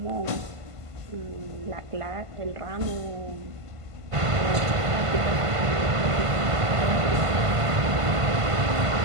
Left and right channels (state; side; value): late; left; 1.5 ms